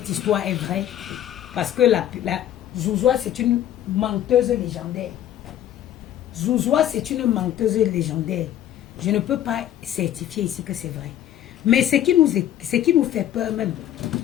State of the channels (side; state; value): right; quieter; 11.6 dB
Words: histoire est vraie. Parce que la Zouzoua, c'est une menteuse légendaire. Zouzoua, c'est une menteuse légendaire. Je ne peux pas certifier ici que c'est vrai. Mais ce qui nous fait peur même,